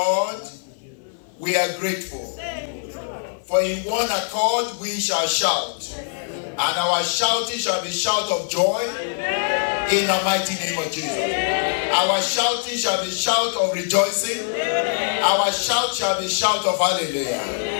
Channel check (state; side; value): silent; right; 56 dB below the other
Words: We are grateful. For in one accord we shall shout, and our shouting shall be shout of joy in the mighty name of Jesus. Our shouting shall be shout of rejoicing. Our shout shall be shout of